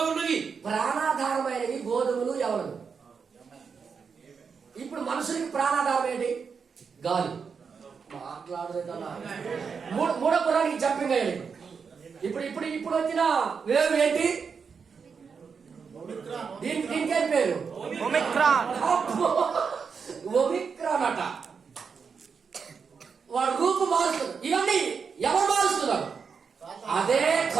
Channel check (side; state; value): left; quieter; 5.9 dB